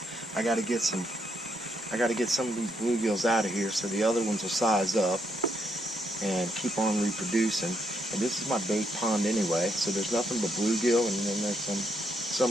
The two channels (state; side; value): normal; both; correlation 0.77